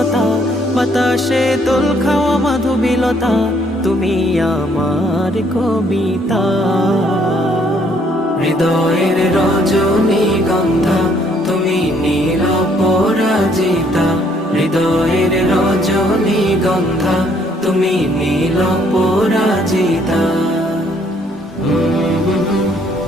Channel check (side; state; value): both; normal; correlation 0.66